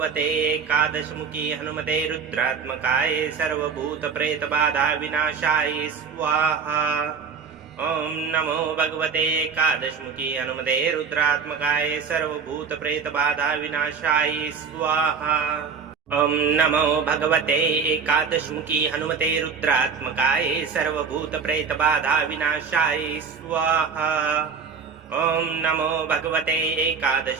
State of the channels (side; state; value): left; quieter; 6.0 dB